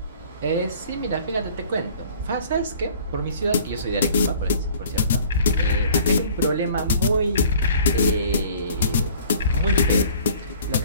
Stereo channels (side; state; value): both; inverted; correlation -0.51